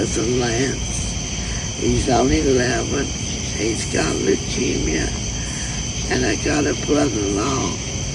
Lance. He's only 11. He's got leukemia. And I got a brother-in-law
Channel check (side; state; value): both; identical; correlation 1.00